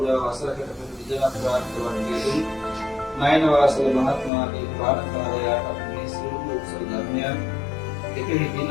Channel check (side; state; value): right; drops out; at 4.3 s